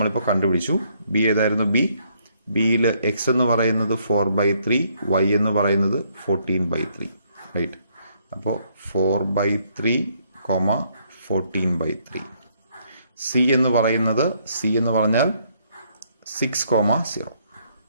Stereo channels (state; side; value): inverted; both; correlation -0.70